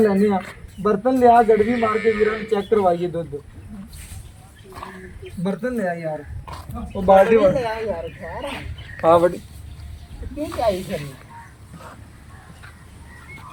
लैने बर्तन लिया गड़वी मार के वीरां नूं चेक करवाइए दुध। बर्तन लिया यार वो बाल्टी हाँ बड़ी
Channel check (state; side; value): identical; both; correlation 1.00